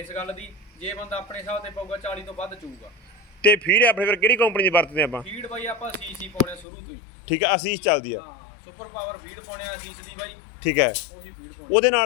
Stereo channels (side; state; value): right; drops out; at 6.7 s